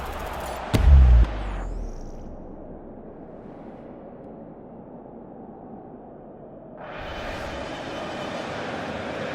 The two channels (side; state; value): both; identical; correlation 1.00